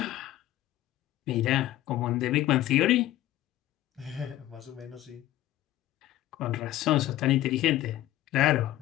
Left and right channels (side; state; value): right; quieter; 14.6 dB